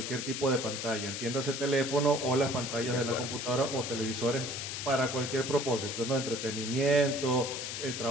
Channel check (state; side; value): noise; left; hiss, 5 dB below the sound